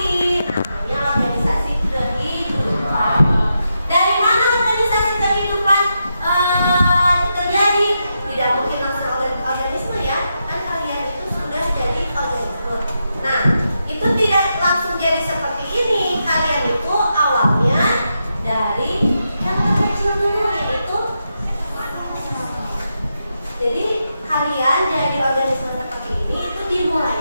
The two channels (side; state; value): both; inverted; correlation -0.85